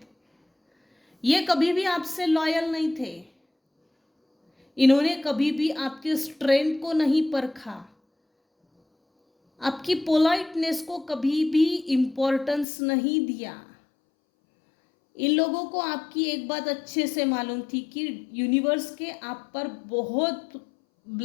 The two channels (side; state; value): right; drops out; at 12.7 s